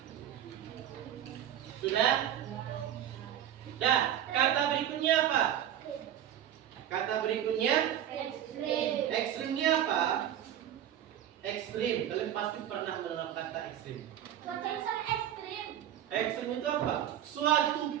Sudah? Nah, kata berikutnya apa? Kata berikutnya Ekstrim. ekstrimnya apa? Ekstrim. Kalian pasti pernah mendengar kata ekstrim. Cuaca ekstrim. Ekstrim itu apa? Suatu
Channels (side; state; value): left; quieter; 10.8 dB